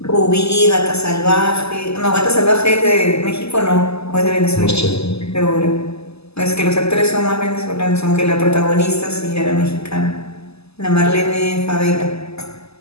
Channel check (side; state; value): right; late; 0.79 ms